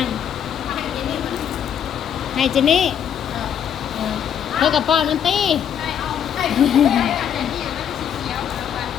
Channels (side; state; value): right; quieter; 8.8 dB